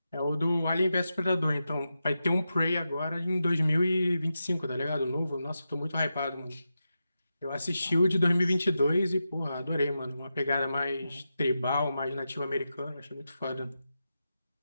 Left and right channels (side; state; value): both; inverted; correlation -0.89